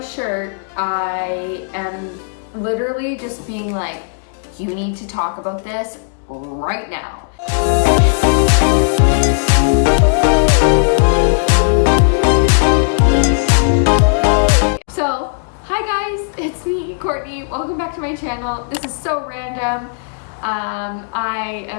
I am literally just being like, you need to talk about this right now. So, hi guys, it's me, Courtney. Welcome back to my channel. This is so random. I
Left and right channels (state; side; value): silent; right; digital silence